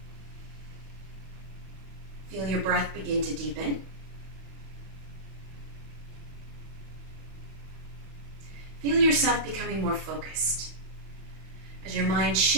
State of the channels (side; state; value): left; late; 31 ms